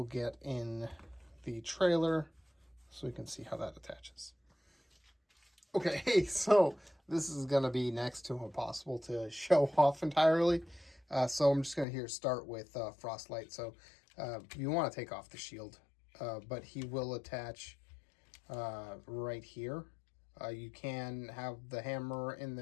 get in the trailer so we can see how that attaches. Okay, so this is going to be next to impossible to show off entirely. So I'm just going to start with Frostlight. So you want to take off the shield, but he will attach right here. You can have the hammer in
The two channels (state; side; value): drops out; right; at 11.9 s